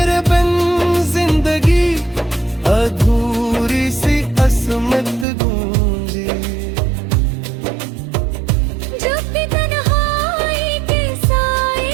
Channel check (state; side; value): drops out; left; at 5.2 s